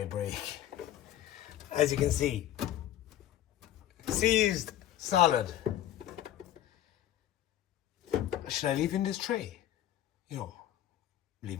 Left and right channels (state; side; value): quieter; right; 12.4 dB